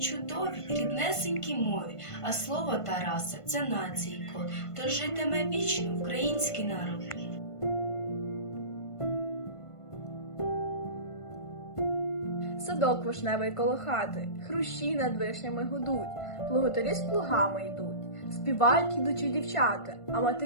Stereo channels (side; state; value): right; late; 1.5 ms